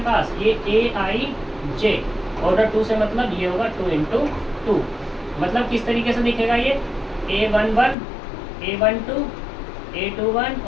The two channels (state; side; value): drops out; right; at 8.0 s